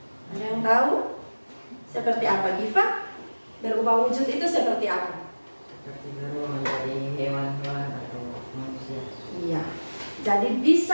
Ada yang tahu? Seperti apa, Giva? Berubah wujud itu seperti apa? Seperti berubah menjadi hewan-hewan atau manusia. Iya. Jadi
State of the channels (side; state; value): both; inverted; correlation -1.00